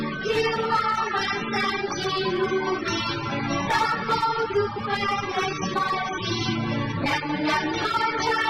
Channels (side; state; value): both; identical; correlation 1.00